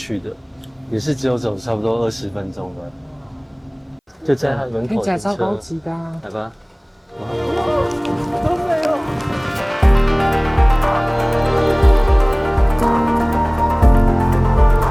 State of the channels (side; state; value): both; identical; correlation 1.00